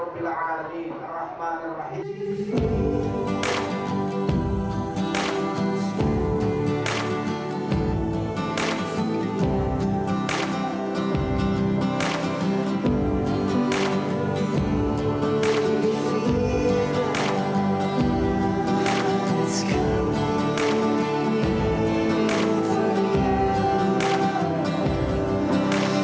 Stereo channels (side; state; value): both; identical; correlation 1.00